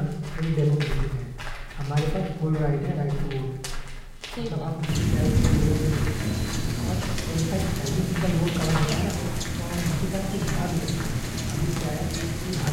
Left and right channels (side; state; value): both; identical; correlation 1.00